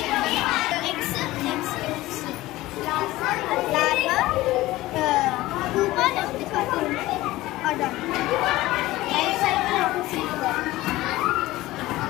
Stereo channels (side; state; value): right; quieter; 17.7 dB